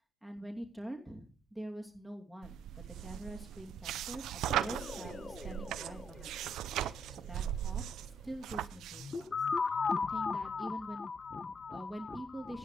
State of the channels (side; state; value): both; normal; correlation 0.72